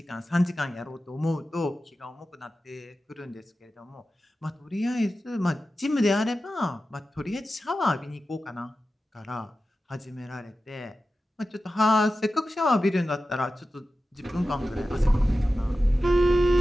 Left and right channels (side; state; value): both; normal; correlation 0.93